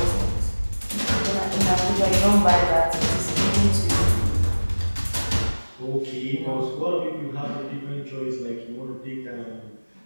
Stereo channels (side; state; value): both; inverted; correlation -1.00